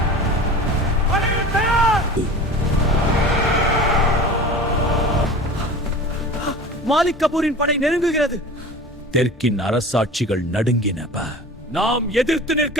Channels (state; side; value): normal; both; correlation 0.37